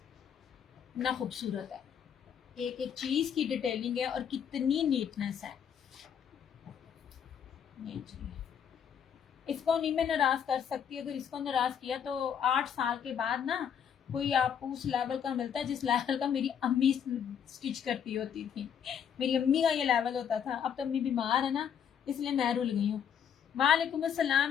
ना खूबसूरत है, एक एक चीज की डिटेलिंग है और कितनी नीटनेस है। इसको नहीं मैं नाराज कर सकती, अगर इसको नाराज किया तो 8 साल के बाद ना कोई आपको उस लेवल का मिलता है जिस लेवल का मेरी अम्मी स्टिच करती होती थी। मेरी अम्मी का ये लेवल होता था। अब तो अम्मी बीमार है ना, इसलिए मैं रुल गई हूँ। वालेकुम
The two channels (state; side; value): quieter; right; 8.2 dB